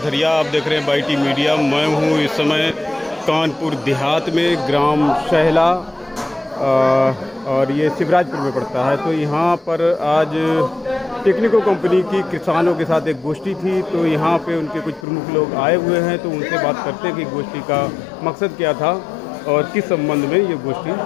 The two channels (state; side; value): drops out; right; at 15.1 s